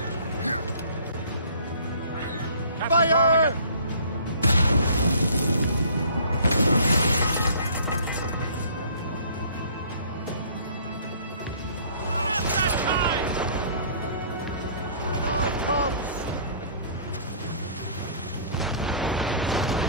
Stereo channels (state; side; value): inverted; both; correlation -0.52